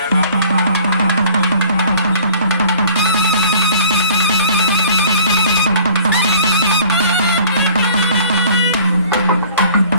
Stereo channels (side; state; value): both; inverted; correlation -0.50